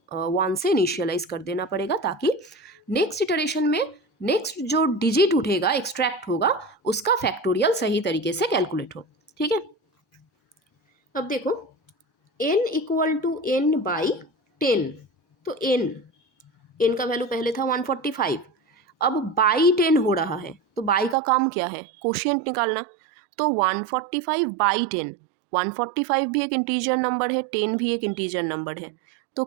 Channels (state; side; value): drops out; left; at 21.2 s